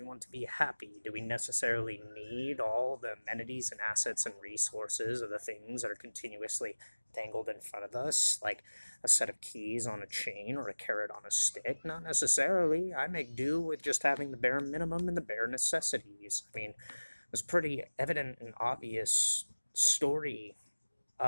want to be happy. Do we necessarily need all the amenities and assets and resources of the things that are continuously dangled in front of us, like a set of keys on a chain or a carrot on a stick? Not necessarily. I make do with just having the bare minimum and the bare necessities. I mean, it was pretty evident and obvious story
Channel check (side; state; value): both; inverted; correlation -1.00